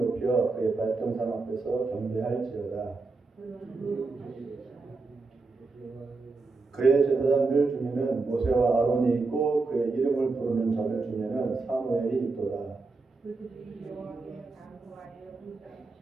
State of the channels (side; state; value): left; quieter; 3.9 dB